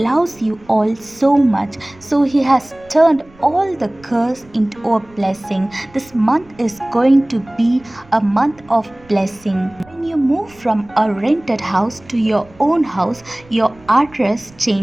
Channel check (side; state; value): right; noise; rumble, 26 dB below the sound